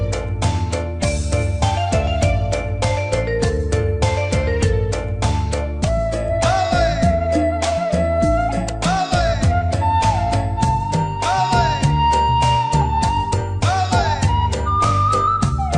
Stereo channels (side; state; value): both; identical; correlation 1.00